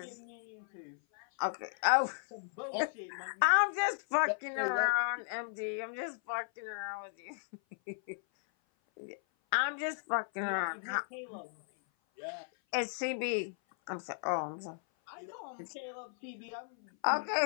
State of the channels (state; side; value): silent; right; 54 dB below the other